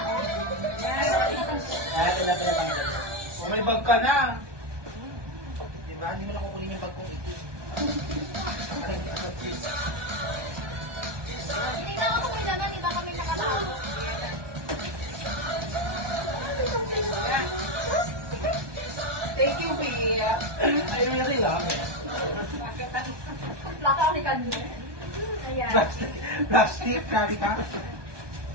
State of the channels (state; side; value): late; left; 1.2 ms